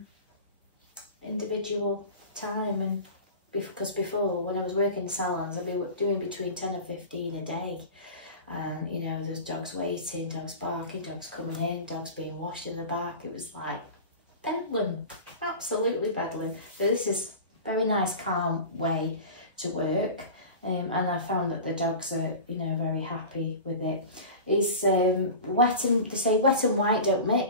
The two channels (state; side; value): inverted; both; correlation -0.33